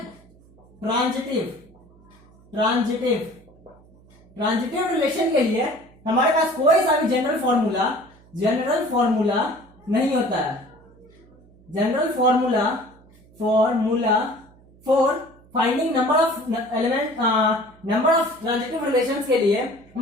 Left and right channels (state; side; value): noise; right; hum, 27 dB below the sound